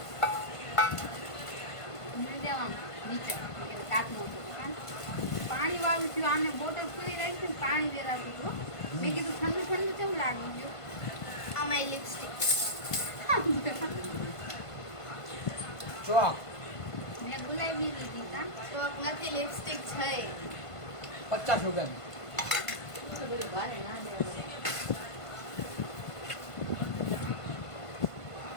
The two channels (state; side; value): late; right; 1.5 ms